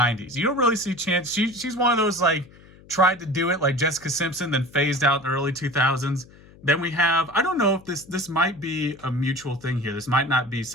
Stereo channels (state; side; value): noise; left; hum, 24 dB below the sound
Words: You don't really see Chansey. She's one of those like tried to do it like Jessica Simpson, then phased out in the early 2000s. Then we have, I don't know if this might be a mutual thing here. This might not be